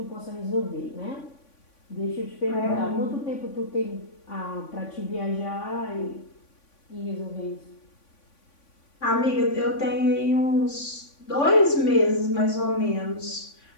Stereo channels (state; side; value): late; right; 3.5 ms